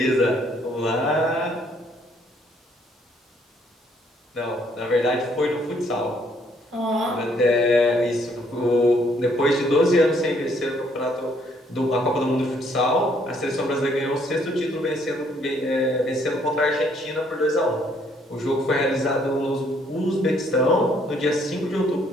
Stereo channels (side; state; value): both; normal; correlation 0.66